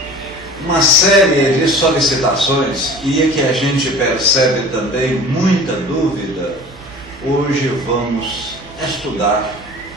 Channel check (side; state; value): right; noise; hum, 23 dB below the sound